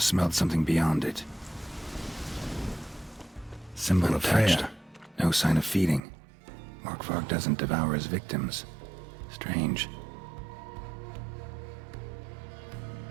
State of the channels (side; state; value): left; drops out; at 6.0 s